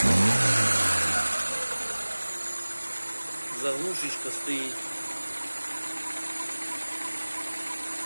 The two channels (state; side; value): inverted; both; correlation -1.00